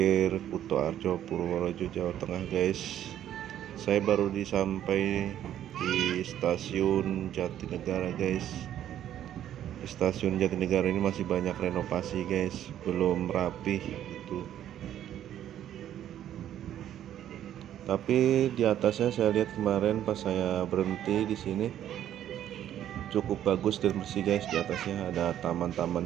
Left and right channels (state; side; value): quieter; left; 11.2 dB